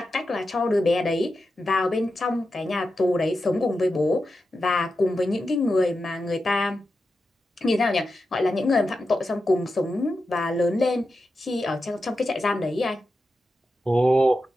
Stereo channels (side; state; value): both; normal; correlation 0.90